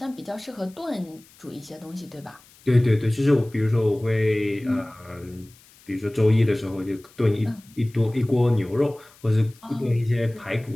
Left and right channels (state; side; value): noise; left; hiss, 27 dB below the sound